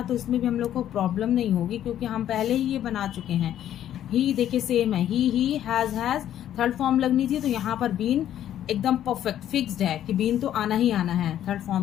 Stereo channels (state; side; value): quieter; right; 11.3 dB